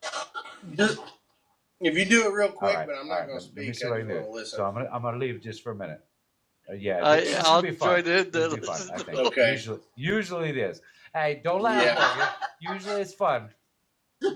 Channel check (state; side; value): identical; both; correlation 1.00